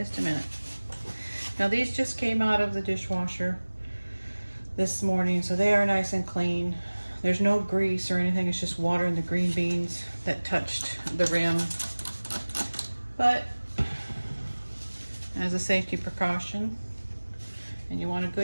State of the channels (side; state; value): both; inverted; correlation -1.00